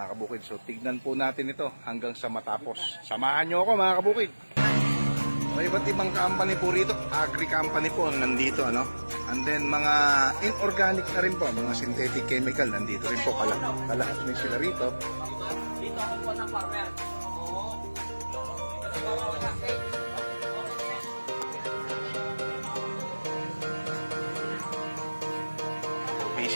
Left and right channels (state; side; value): inverted; both; correlation -1.00